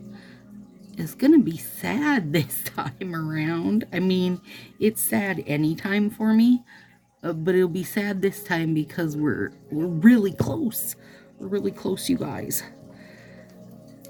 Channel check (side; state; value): both; identical; correlation 1.00